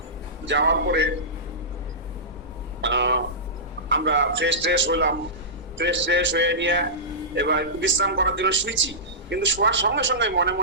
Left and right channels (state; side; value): normal; both; correlation -0.18